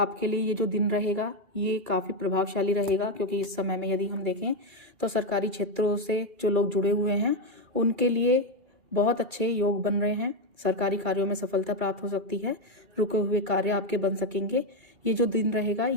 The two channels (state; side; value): late; left; 2.3 ms